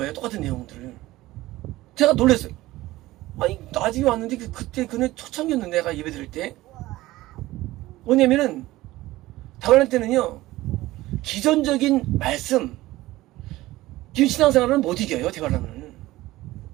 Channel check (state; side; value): quieter; left; 17.5 dB